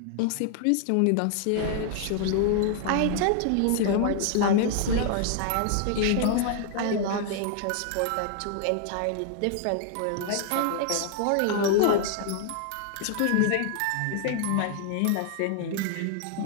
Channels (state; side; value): different; both; correlation 0.00